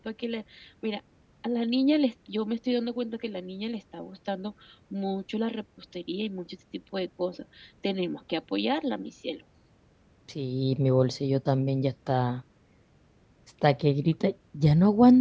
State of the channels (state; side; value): identical; both; correlation 1.00